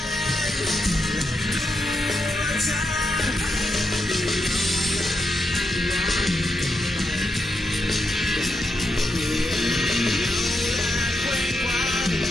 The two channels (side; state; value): both; normal; correlation 0.83